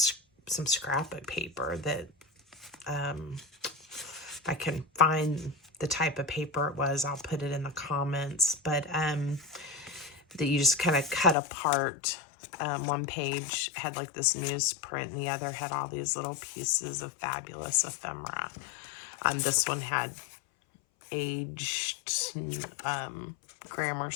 some scrapbook paper that if I can find the type of paper it was, I'll put it in the comments. But that you just kind of cut apart. One page had like this newsprint, and the other had all these little pieces of fabulous ephemera. This one had aged grammar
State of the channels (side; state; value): right; drops out; at 11.4 s